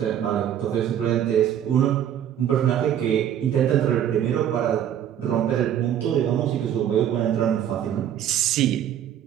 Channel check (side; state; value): left; quieter; 10.2 dB